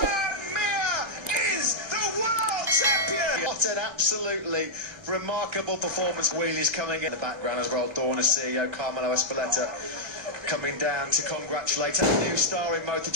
Mir is the world champion! What an absolutely remarkable performance. Wheelies coming in the background as well. Dorna CEO Carmelo Espeleta coming down to congratulate a new star in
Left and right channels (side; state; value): left; late; 1.3 ms